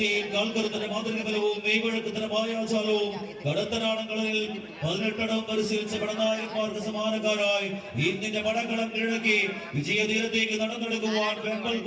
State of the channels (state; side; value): identical; both; correlation 1.00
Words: കാൽക്കരുത്തിന് മാതൃക ബലവും മെയ്വഴക്കത്തിന് മായാജാലവും കടത്തനാടങ്ങളിൽ 18 പരിശീലിച്ച പടനായകന്മാർക്ക് സമാനക്കാരായി ഇന്നിന്റെ പടക്കളം കിഴക്കി വിജയതീരത്തേക്ക് നടന്നെടുക്കുവാൻ വെമ്പൽ